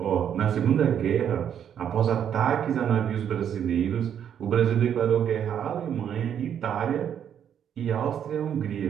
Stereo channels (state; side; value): quieter; left; 9.0 dB